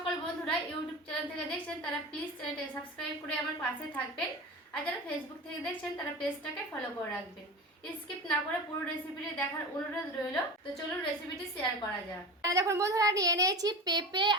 বন্ধুরা ইউটিউব চ্যানেল থেকে দেখছেন তারা প্লিজ চ্যানেলটাকে সাবস্ক্রাইব করে আমার পাশে থাকবেন, আর যারা ফেসবুক থেকে দেখছেন তারা পেজটাকে ফলো করে রাখবেন। স্কিপ না করে পুরো রেসিপিটি দেখার অনুরোধ রইল। তো চলুন রেসিপিটি শেয়ার করা যাক। দেখুন বন্ধুরা, নিয়ে নিয়েছি পেঁপে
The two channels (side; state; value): both; normal; correlation 0.30